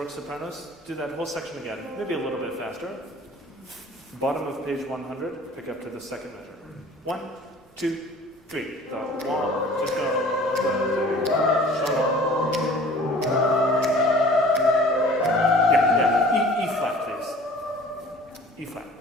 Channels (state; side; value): normal; both; correlation 0.48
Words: sopranos. Do that whole section again, maybe a little bit faster. Bottom of page 100, pick up to the second measure. 1, 2, 3. The waters go, shalom. Yeah. E flat, please. E flat.